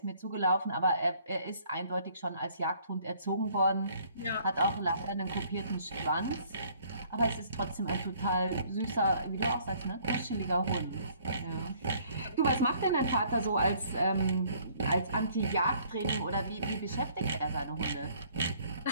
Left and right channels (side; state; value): both; inverted; correlation -0.60